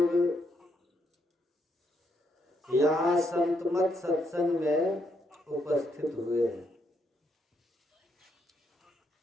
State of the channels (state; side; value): normal; both; correlation 0.76